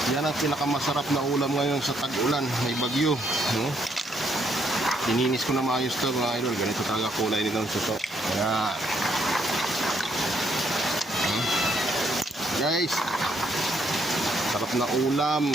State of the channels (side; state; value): both; normal; correlation 0.72